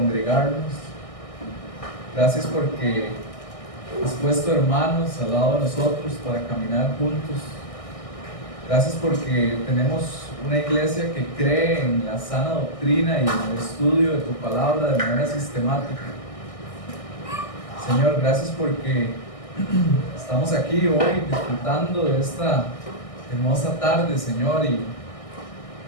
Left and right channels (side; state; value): right; late; 1.6 ms